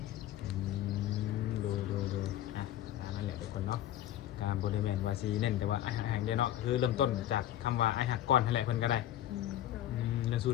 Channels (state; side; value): quieter; right; 12.5 dB